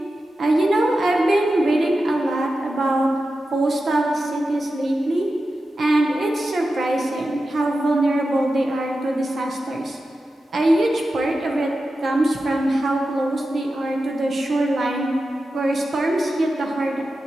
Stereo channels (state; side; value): normal; both; correlation 0.92